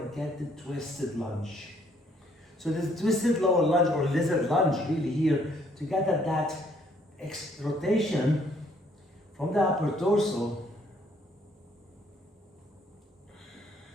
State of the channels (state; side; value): normal; both; correlation 0.66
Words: get the twisted lunge. So this twisted lower lunge or lizard lunge really here, to get that rotation from the upper torso.